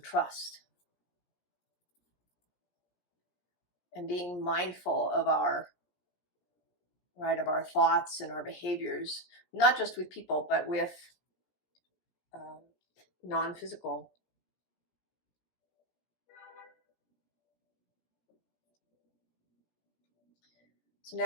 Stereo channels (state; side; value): late; right; 17 ms